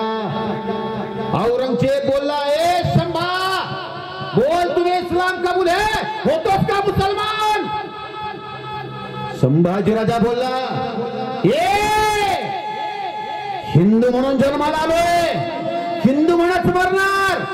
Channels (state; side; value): identical; both; correlation 1.00